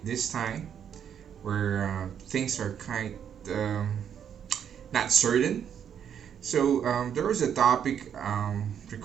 this time where things are kind um, not certain. So there was a topic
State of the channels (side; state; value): left; quieter; 8.5 dB